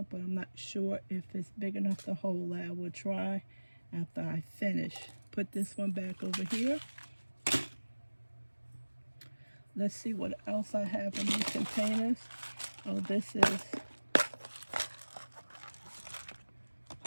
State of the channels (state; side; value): inverted; both; correlation -1.00